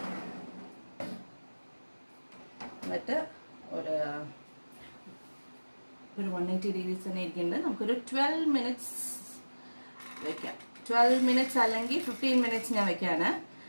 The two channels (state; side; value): inverted; both; correlation -1.00